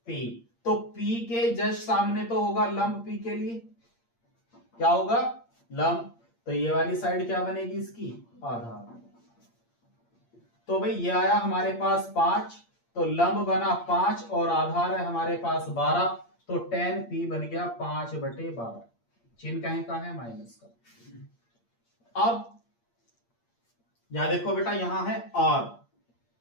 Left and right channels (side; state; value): right; late; 8.6 ms